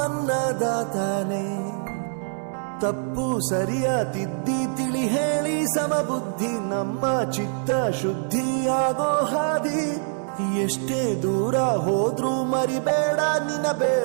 ಅನ್ನದಾತಾನೆ. ತಪ್ಪು ಸರಿಯ ತಿದ್ದಿ ತಿಳಿ ಹೇಳಿ ಸಮಬುದ್ಧಿ, ನಮ್ಮ ಚಿತ್ತ ಶುದ್ಧಿಯಾಗೋ ಹಾದಿ. ಎಷ್ಟೇ ದೂರ ಹೋದ್ರೂ ಮರಿಬೇಡ ನಿನ್ನ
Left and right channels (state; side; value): silent; left; 62 dB below the other